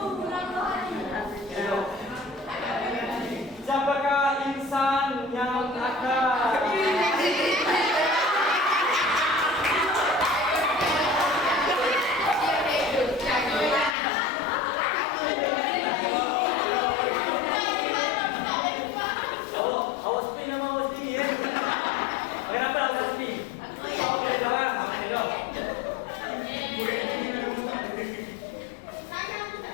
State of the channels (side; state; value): right; drops out; at 14.0 s